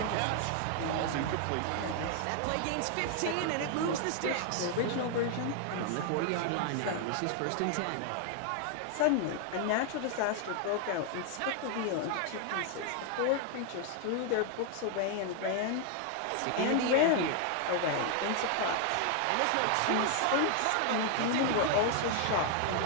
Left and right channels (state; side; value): different; both; correlation 0.00